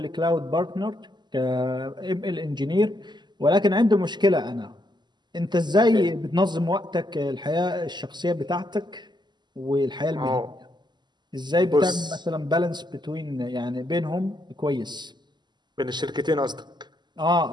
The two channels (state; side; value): late; left; 0.21 ms